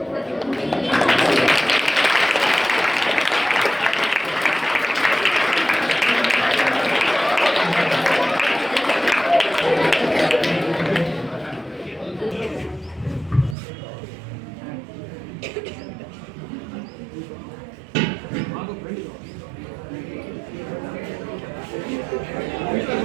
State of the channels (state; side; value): drops out; left; at 13.6 s